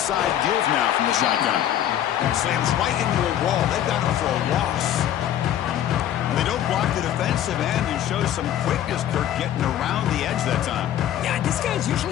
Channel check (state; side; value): quieter; right; 11.3 dB